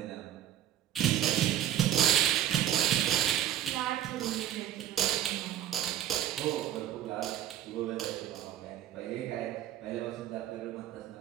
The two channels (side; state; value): left; quieter; 11.8 dB